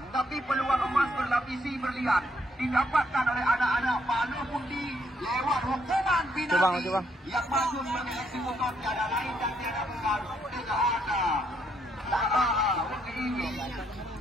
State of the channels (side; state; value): both; normal; correlation 0.73